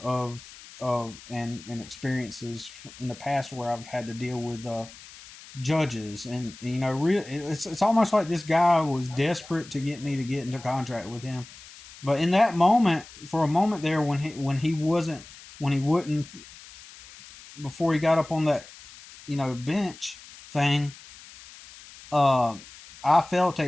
and experiences in the past where I've had to deal with judges, and it's almost like this guy was desperate to get me to get into contract with him. But in that moment, for a moment there, when he wouldn't, before he got up on that bench thing, uh, I felt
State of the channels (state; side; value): noise; left; hiss, 19 dB below the sound